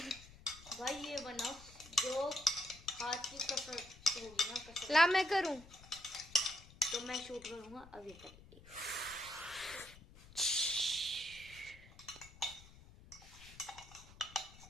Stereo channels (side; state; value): left; noise; rumble, 20 dB below the sound